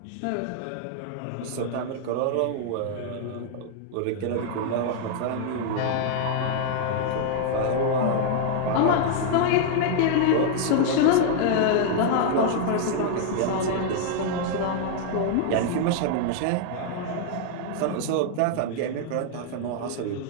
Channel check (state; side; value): different; both; correlation -0.01